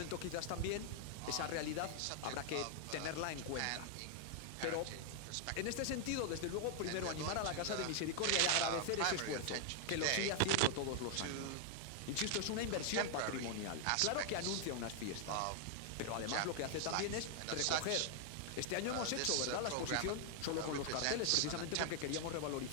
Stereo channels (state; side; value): different; both; correlation 0.00